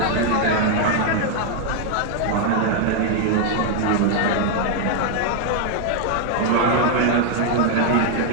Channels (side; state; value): both; different; correlation 0.00